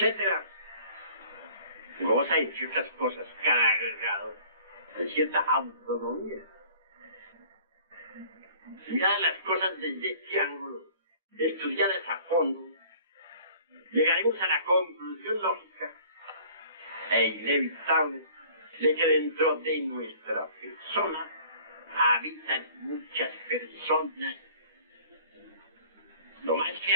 Goza, entre otras cosas, cada agregado de cierta autonomía. Miradas las cosas desde este ángulo, estudiadas a fondo, llegaremos a la conclusión lógica e inevitable de que dentro de nuestra persona habitan muchas personas. Lo más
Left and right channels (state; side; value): inverted; both; correlation -0.51